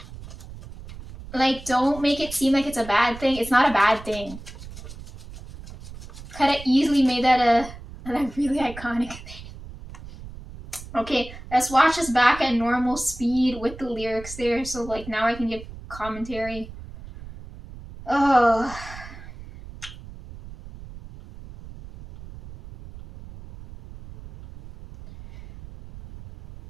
don't make it seem like it's a bad thing. It's not a bad thing. Could have easily made that a really iconic thing. Okay, let's watch this back at normal speed with the lyrics there, so like now I can give commentary. Oh.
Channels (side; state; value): right; noise; rumble, 15 dB below the sound